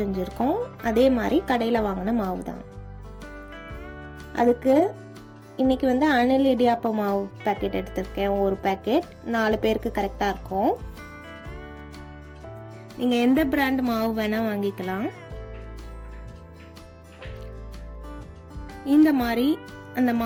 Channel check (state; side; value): identical; both; correlation 1.00